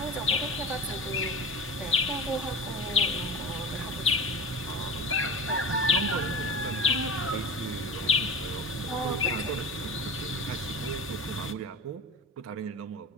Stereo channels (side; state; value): both; normal; correlation 0.31